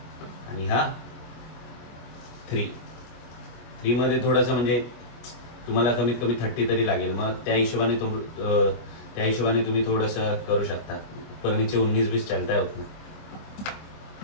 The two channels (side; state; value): right; late; 25 ms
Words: आणि हा 3 मध्ये थोडंसं म्हणजे तुम्हाला कमीत कमी 30 तरी लागेल. मग त्या हिशोबाने तुम्ही थोडंसं करू शकता. परनीचे 19-20 चालता होत नाही.